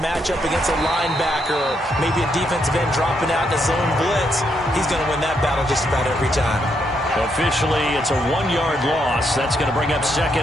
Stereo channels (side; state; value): both; normal; correlation 0.77